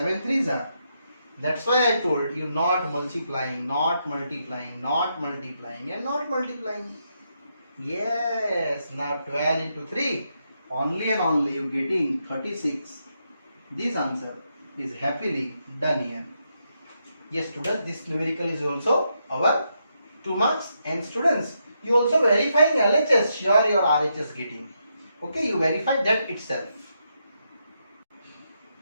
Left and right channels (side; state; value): both; inverted; correlation -0.81